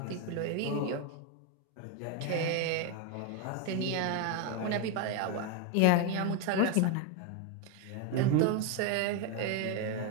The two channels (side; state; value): both; different; correlation 0.02